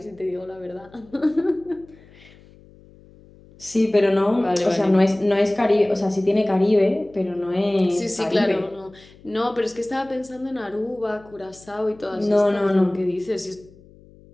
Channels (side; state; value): left; noise; hum, 25 dB below the sound